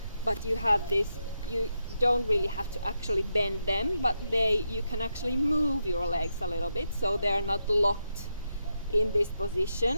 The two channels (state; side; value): inverted; both; correlation -0.84